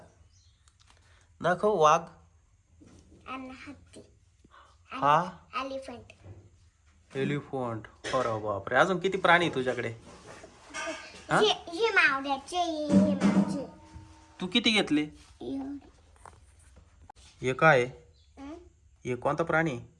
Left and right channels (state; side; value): identical; both; correlation 1.00